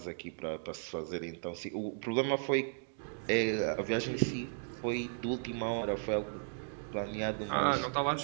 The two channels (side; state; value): left; silent; digital silence